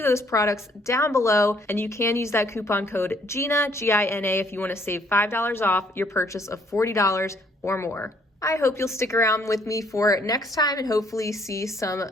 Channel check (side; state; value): both; normal; correlation 0.65